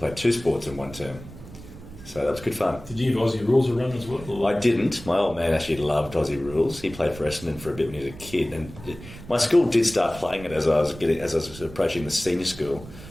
2 sports in one term. So that was good fun. Did you have Aussie rules around as well? Or? I didn't. My old man actually loved Aussie rules. He played for Essendon for a bit when he was a kid, and my school did start playing it as I was approaching the senior school,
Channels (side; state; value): right; noise; rumble, 16 dB below the sound